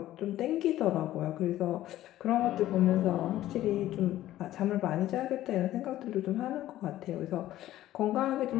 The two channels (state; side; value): quieter; right; 14.1 dB